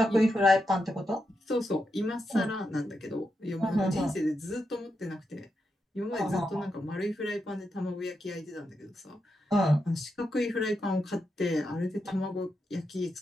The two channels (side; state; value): both; normal; correlation 0.85